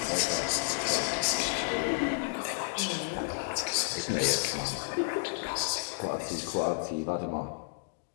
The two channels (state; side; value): silent; right; digital silence